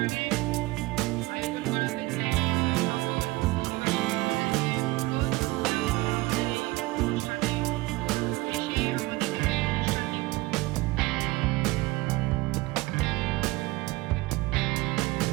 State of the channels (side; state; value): left; quieter; 20.9 dB